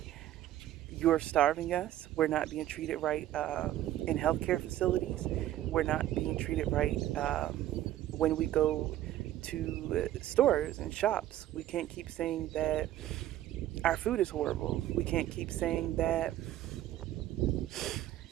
you're starving us. We're not being treated right in healthcare facilities. We're not being treated right when we go to stores and shops. We can't keep saying that our food is horrible. We can't keep saying that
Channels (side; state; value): left; quieter; 13.3 dB